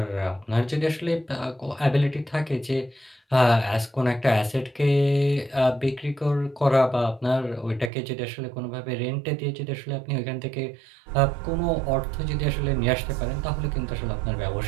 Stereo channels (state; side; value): drops out; left; at 7.9 s